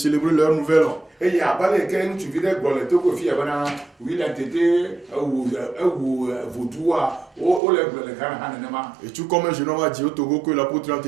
leur nouvel an. Et tout comme un jeune homme a dit au Togo que l'apôtre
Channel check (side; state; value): left; drops out; at 7.6 s